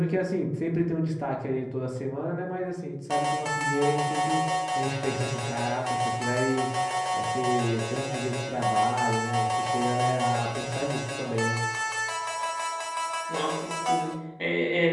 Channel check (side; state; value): both; identical; correlation 1.00